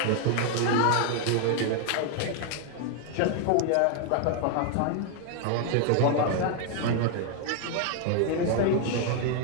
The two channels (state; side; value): different; both; correlation 0.00